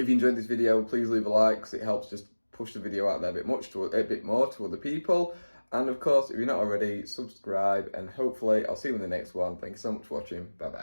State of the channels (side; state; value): both; inverted; correlation -1.00